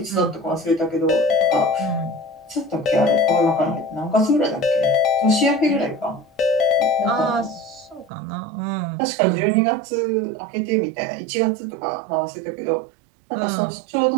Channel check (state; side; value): drops out; left; at 8.1 s